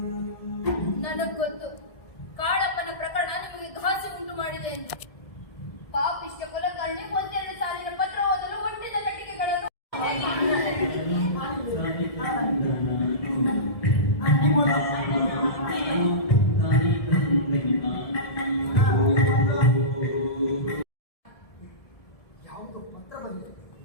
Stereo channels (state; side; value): late; right; 1.7 ms